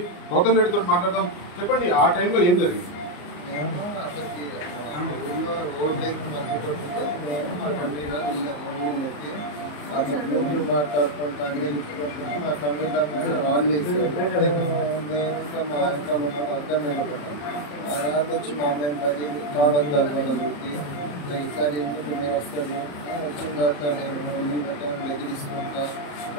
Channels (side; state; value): right; late; 34 ms